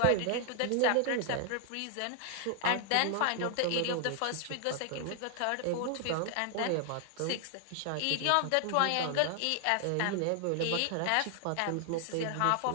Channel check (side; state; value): both; different; correlation 0.00